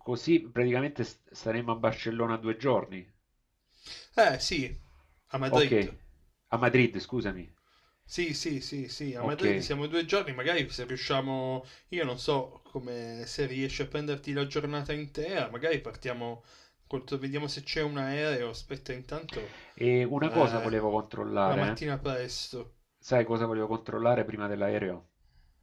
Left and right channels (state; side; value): identical; both; correlation 1.00